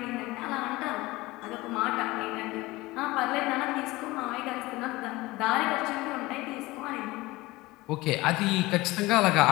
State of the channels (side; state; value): right; quieter; 20.3 dB